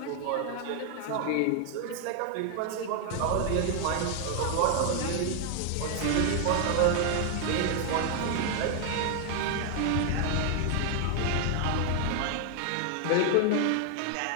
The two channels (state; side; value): different; both; correlation 0.00